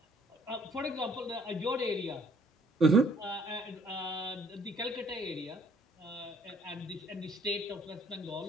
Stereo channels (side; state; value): both; normal; correlation 0.62